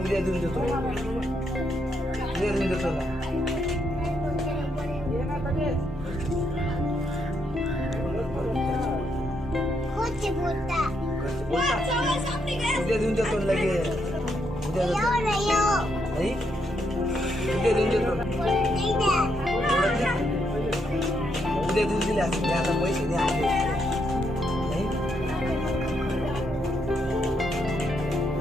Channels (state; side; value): normal; both; correlation 0.77